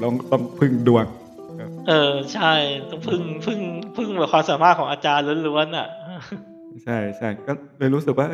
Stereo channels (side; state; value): both; identical; correlation 1.00